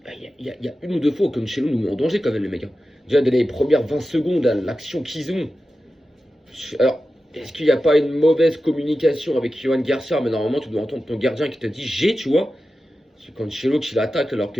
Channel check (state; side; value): normal; both; correlation 0.93